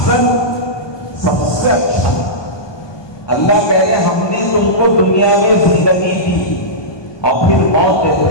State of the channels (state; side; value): late; right; 1.2 ms